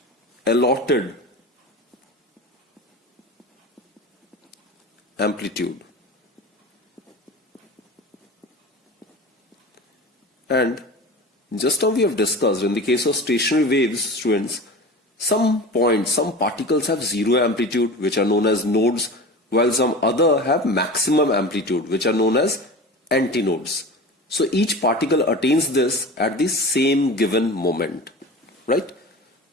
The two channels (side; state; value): both; normal; correlation 0.33